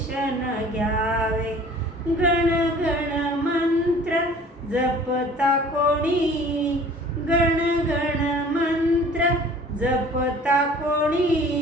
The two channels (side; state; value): both; normal; correlation 0.48